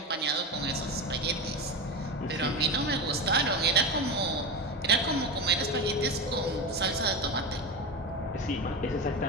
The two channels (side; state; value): both; normal; correlation 0.20